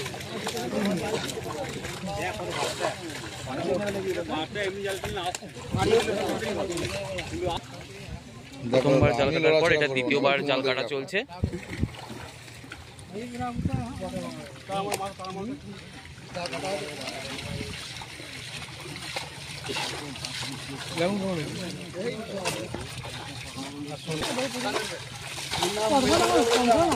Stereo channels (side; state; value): both; identical; correlation 1.00